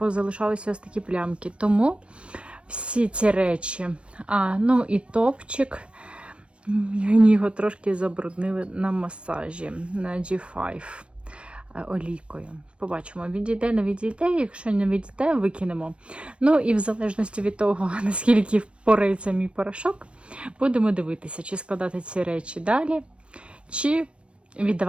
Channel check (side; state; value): left; late; 0.058 ms